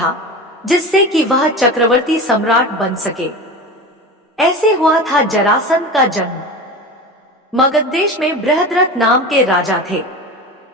जिससे कि वह चक्रवर्ती सम्राट बन सके। ऐसे हुआ था जरासंध का जन्म। मगध देश में बृहद्रथ नाम के राजा थे।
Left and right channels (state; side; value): normal; both; correlation 0.29